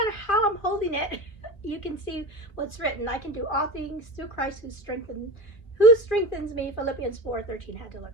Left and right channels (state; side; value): late; right; 2.2 ms